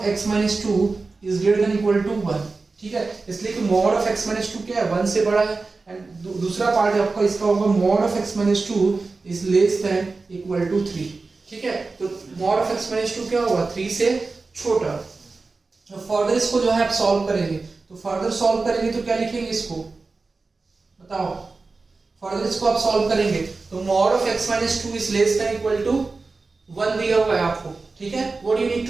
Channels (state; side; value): quieter; left; 3.9 dB